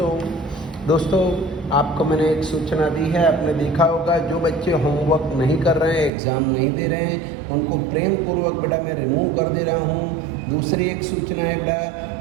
दोस्तों। आपको मैंने एक सूचना दी है, आपने देखा होगा जो बच्चे होमवर्क नहीं कर रहे हैं, एग्ज़ाम नहीं दे रहे हैं, उनको प्रेम पूर्वक बेटा मैं रिमूव कर दे रहा हूँ। दूसरी एक सूचना है बेटा,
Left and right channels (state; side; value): drops out; left; at 6.1 s